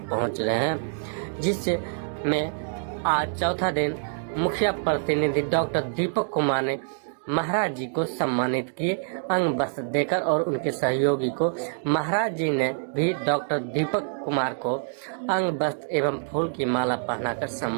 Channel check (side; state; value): left; silent; digital silence